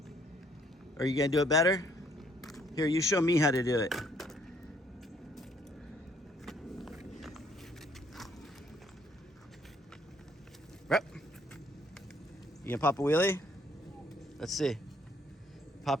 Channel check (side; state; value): both; normal; correlation 0.65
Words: Are you gonna do it better? Here, you show me how to do it. Rep. You gonna pop a wheelie? Let's see.